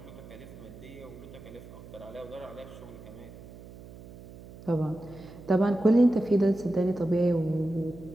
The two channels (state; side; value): noise; right; hum, 17 dB below the sound